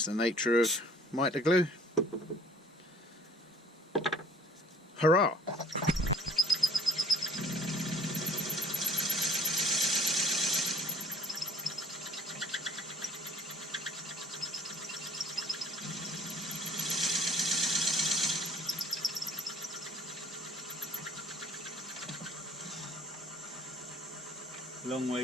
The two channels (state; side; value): normal; both; correlation 0.52